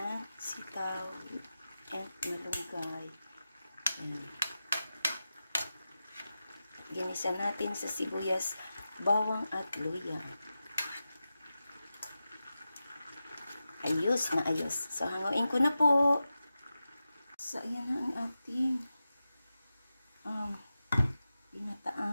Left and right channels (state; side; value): inverted; both; correlation -0.92